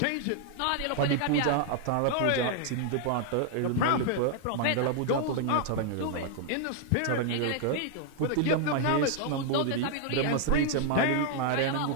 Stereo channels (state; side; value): different; both; correlation 0.00